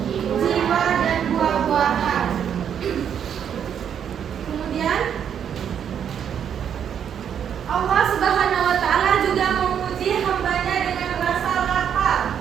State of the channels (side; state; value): left; quieter; 8.5 dB